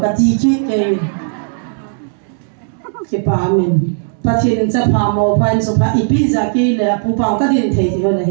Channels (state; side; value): silent; left; digital silence